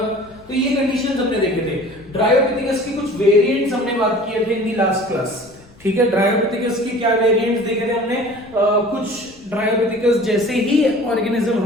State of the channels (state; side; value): noise; left; rumble, 26 dB below the sound